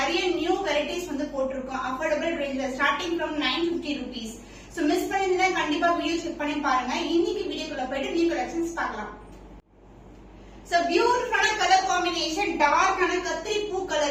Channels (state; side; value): identical; both; correlation 1.00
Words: நியூ வெரைட்டிஸ் வந்து போட்டிருக்கோம். அஃபோர்டபிள் ரேஞ்ச்ல starting from 950 rupees. So miss பண்ணிருந்தா கண்டிப்பா வீடியோ செக் பண்ணி பாருங்க. இன்னைக்கு வீடியோக்குள்ள போயிட்டு நியூ கலெக்ஷன்ஸ் பார்க்கலாம். சோ பியூட்டிஃபுல்லான கலர் காம்பினேஷன், டார்க்கான கத்திரி பூ